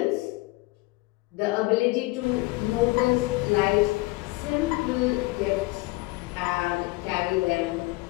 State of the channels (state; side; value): quieter; right; 22.6 dB